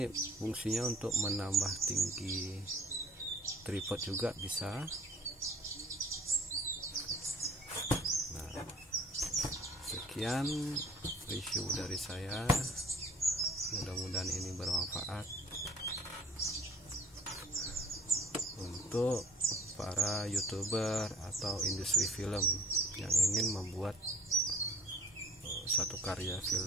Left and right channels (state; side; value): normal; both; correlation 0.51